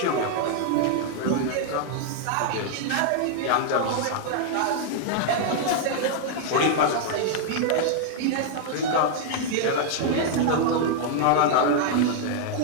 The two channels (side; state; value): both; different; correlation 0.00